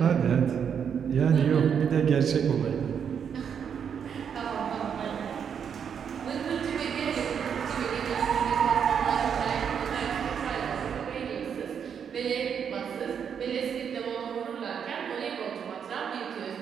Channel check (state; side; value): quieter; left; 7.5 dB